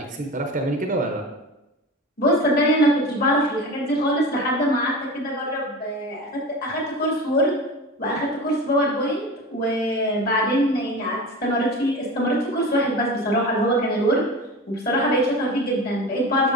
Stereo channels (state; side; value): normal; both; correlation 0.31